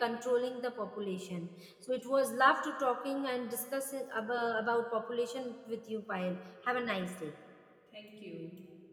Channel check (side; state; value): both; identical; correlation 1.00